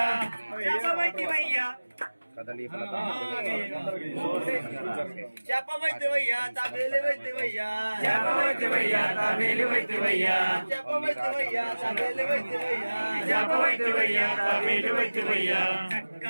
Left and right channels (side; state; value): both; inverted; correlation -1.00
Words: శాపమైతివయ్యా కదలి ఫలత చెప్పవైతివయ్యా తాబేలివైతివయ్యా చెప్పవైతివయ్యా తాబేలివైతివయ్యా చెప్పవైతివయ్యా తాబేలివైతివయ్యా చెప్పవైతివయ్యా తాబేలివైతివయ్యా